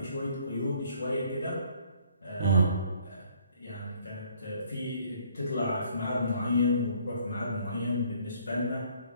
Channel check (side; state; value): both; inverted; correlation -0.61